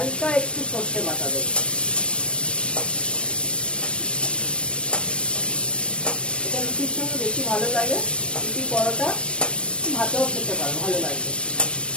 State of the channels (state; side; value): late; right; 0.058 ms